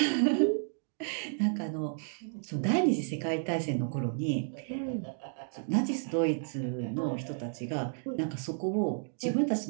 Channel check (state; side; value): silent; left; digital silence